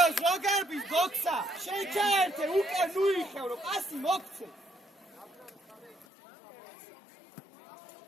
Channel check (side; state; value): right; drops out; at 6.1 s